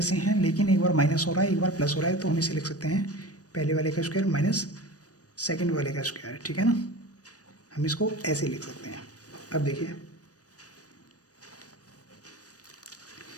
हैं लेकिन एक बार माइनस हो रहा है एक बार प्लस हो रहा है, तो हम इसे लिख सकते हैं पहले वाले का स्क्वायर माइनस सेकंड वाले का स्क्वायर, ठीक है ना। हम इसको ऐसे लिख सकते हैं। अब देखिए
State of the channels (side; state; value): right; late; 0.67 ms